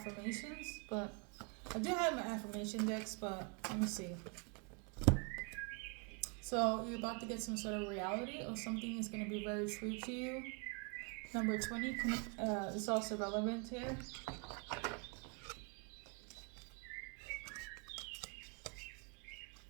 but I do have my affirmation decks, but let me see. So you're about to get some sort of reality or something is going to be very true to you. Number 20 is also relevant here.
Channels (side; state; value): left; quieter; 34.5 dB